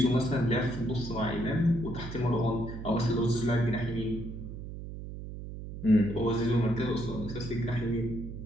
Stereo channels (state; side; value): noise; right; hum, 9 dB below the sound